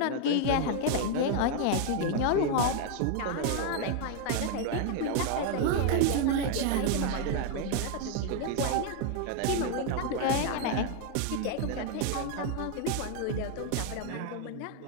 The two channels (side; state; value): both; different; correlation 0.00